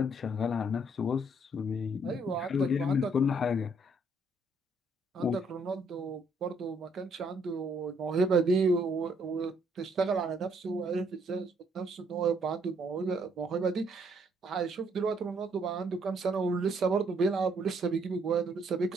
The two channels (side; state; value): both; normal; correlation 0.68